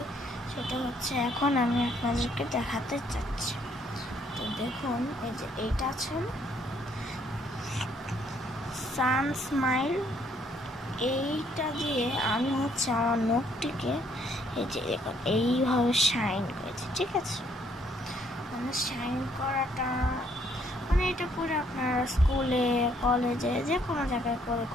সেটা হচ্ছে এখন আমি আপনাদেরকে দেখাতে চাচ্ছি। তো দেখুন, এই যে এইটা আছে সান স্মাইল, এইটা দিয়ে আমি হচ্ছে আমার নখটিকে এই যে দেখুন এইভাবে শাইন করেছি। ঠিক আছে, মানে শাইন করাটা মানে এটা করে আপনারা স্কুলে কলেজে যে কোনো জায়গায় করে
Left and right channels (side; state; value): both; normal; correlation 0.67